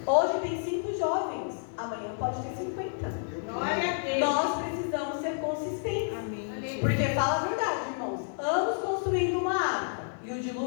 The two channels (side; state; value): right; silent; digital silence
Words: Hoje tem 5 jovens, amanhã pode ter 50. Glória a Deus. Nós precisamos ser consistentes. Amém. Porque fala a verdade, irmãos. Anos construindo uma arca e o